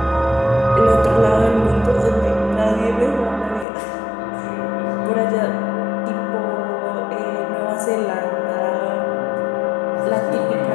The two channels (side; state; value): right; drops out; at 3.7 s